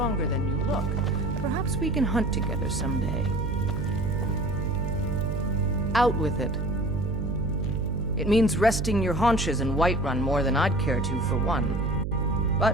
than you look. Perhaps we can hunt together someday. Out with it. It means resting your haunches in Whiterun more than I'd care to, for one.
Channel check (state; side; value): noise; right; hum, 2 dB below the sound